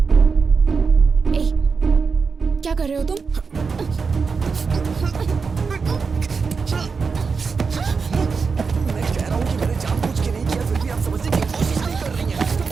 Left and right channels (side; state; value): left; quieter; 5.1 dB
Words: क्या कर रहे हो तुम? मैं कह रहा हूँ कि मैंने जानबूझ के नहीं किया, फिर भी आप समझने की कोशिश नहीं कर रही हैं।